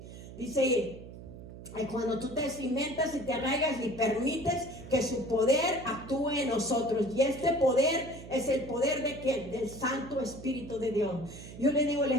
Dice, cuando tú te cimentas y te arraigas y permites que su poder actúe en nosotros. Y este poder es el poder de ¿quién? Del Santo Espíritu de Dios. Yo le digo, el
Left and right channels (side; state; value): right; noise; hum, 14 dB below the sound